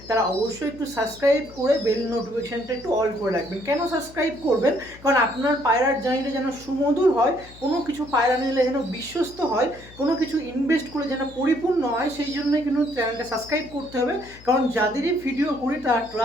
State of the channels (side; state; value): left; noise; hum, 21 dB below the sound